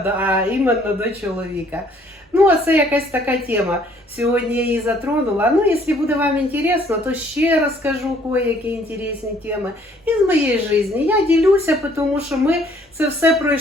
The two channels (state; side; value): normal; both; correlation 0.61